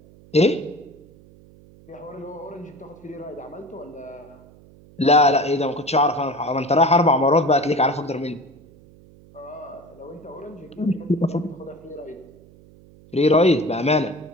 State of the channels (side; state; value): right; noise; hum, 25 dB below the sound